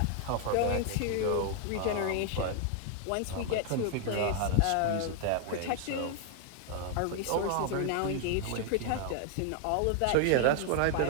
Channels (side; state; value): both; different; correlation 0.00